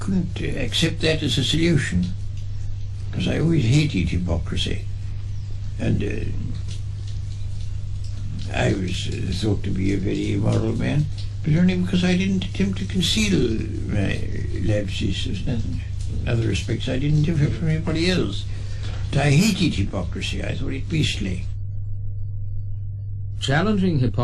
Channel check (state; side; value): identical; both; correlation 1.00